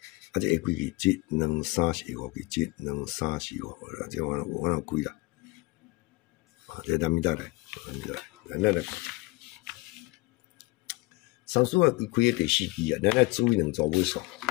啊，这下几支？1、2、3、4、5支，1、2、3、4、5，这我哪开啦？啊，这咱咪再来，咱来。三数啊，开第4支啊，咱来注意2组尾数，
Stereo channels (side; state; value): right; quieter; 22.8 dB